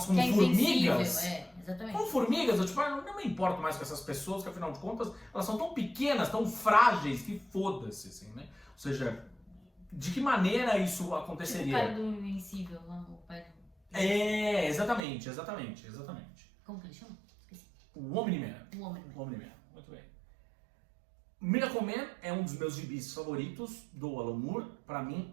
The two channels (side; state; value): left; drops out; at 15.0 s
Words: como que é formigas? Exatamente. Como formigas, eu tipo, não me importo mais com essas pessoas, que afinal de contas, elas são tão pequenas, tão frágeis, que foda-se, assim, né? Ou seja, de que maneira isso aconteceria? Tipo o cara do Invencível, o pai do... exatamente. Como que ele chama? Esqueci. O Omni-Man. Omni-Man. Muito bem. Miracle Man é um dos meus gibis favoritos do Alan Moore. Pra mim